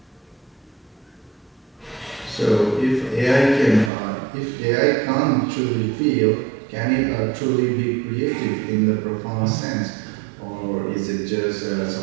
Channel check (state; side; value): drops out; left; at 3.9 s